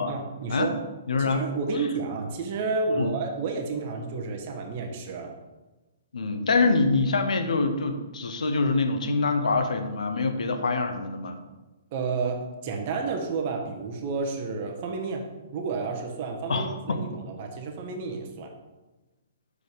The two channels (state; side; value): inverted; both; correlation -0.60